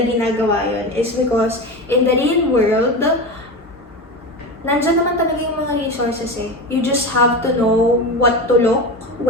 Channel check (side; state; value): both; normal; correlation 0.24